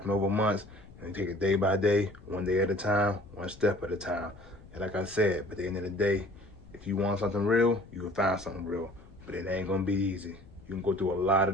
over months. And you take it day by day, one day at a time, one step at a time. And like I said, but at the end of the day, if you want something real, you can find something real. But it ain't gonna be easy. You can go through a lot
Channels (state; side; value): noise; left; rumble, 22 dB below the sound